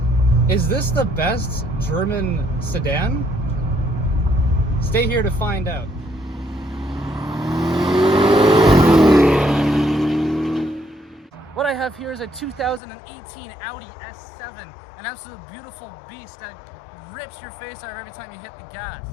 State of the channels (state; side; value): drops out; right; at 12.8 s